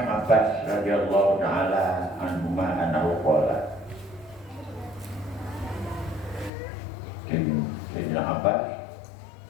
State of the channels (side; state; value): right; drops out; at 6.5 s